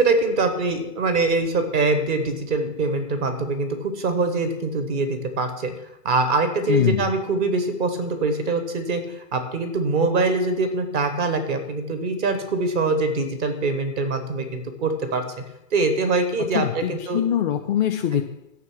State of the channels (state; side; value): late; left; 2.3 ms